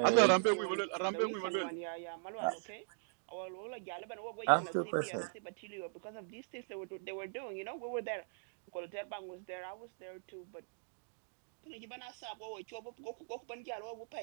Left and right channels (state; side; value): silent; left; digital silence